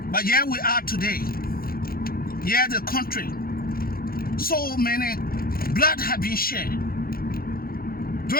But here we are today. Here the country, so many blood have been shed.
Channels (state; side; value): late; right; 0.43 ms